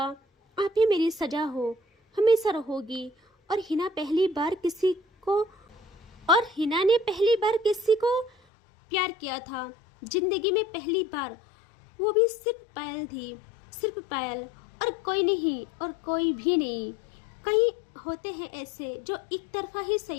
आप ही मेरी सजा हो, हमेशा रहोगी। और हिना ने पहली बार किसी को प्यार किया था, जिंदगी में पहली बार, वो भी सिर्फ पायल थी, सिर्फ पायल, और कोई नहीं, और कोई भी नहीं। कई होते हैं ऐसे जो एक तरफा ही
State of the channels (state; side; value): drops out; right; at 8.3 s